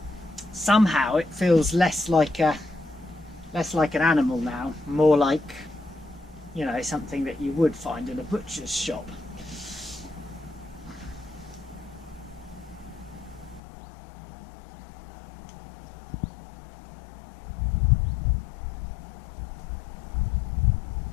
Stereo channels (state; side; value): drops out; right; at 13.6 s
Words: Somehow it feels less like an animal now, more like, you know, something that you would find in a butcher's shop.